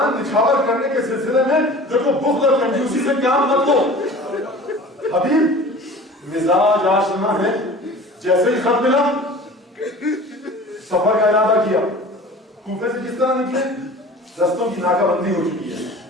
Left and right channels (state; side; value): normal; both; correlation 0.41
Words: نچھاور کرنے کے سلسلے میں دیکھو بخل اور کنجوسی سے کام مت لو. حبیب مزاج آشنا ہے. جیسے ہی خط ملا سفر کا ارادہ کیا. کوفے سے کس طرح نکلے, رستوں کی ناکہ بندی ہو چکی ہے,